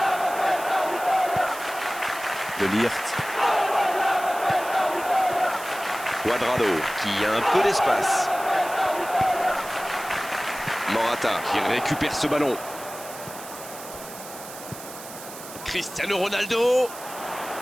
De Ligt. Cuadrado qui a un peu d'espace. Morata qui récupère ce ballon. Cristiano Ronaldo.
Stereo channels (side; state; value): right; noise; hiss, 14 dB below the sound